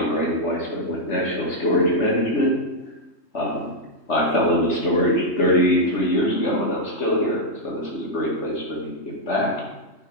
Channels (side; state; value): right; late; 3.2 ms